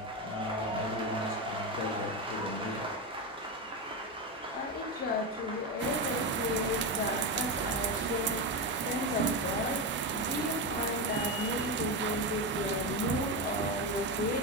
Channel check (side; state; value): both; normal; correlation 0.14